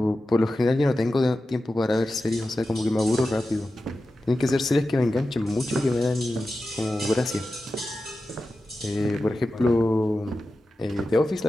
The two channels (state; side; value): normal; both; correlation 0.93